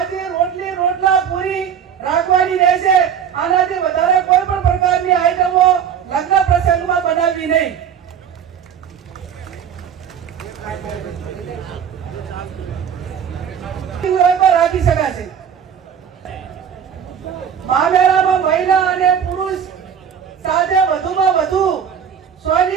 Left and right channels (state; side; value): quieter; left; 8.1 dB